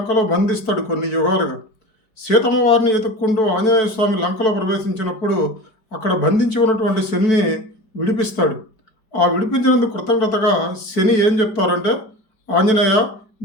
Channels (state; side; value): late; right; 4.5 ms